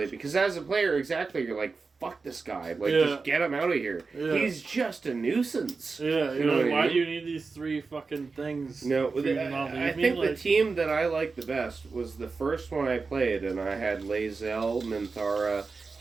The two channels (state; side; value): quieter; left; 4.4 dB